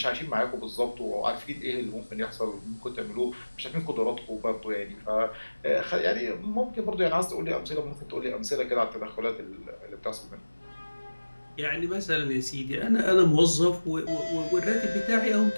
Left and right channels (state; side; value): inverted; both; correlation -1.00